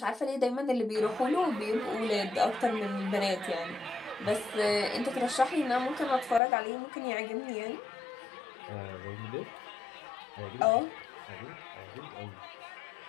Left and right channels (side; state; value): right; drops out; at 6.4 s